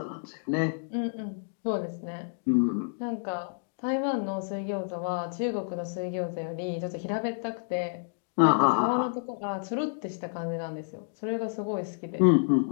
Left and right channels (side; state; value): right; silent; digital silence